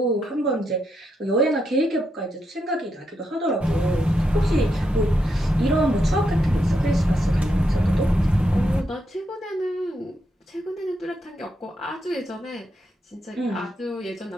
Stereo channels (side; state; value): both; normal; correlation 0.82